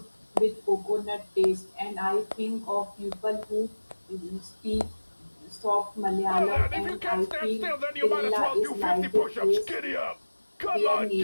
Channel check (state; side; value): inverted; both; correlation -1.00